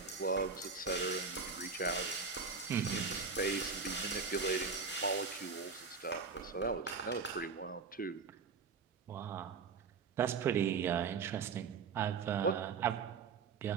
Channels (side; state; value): left; quieter; 5.2 dB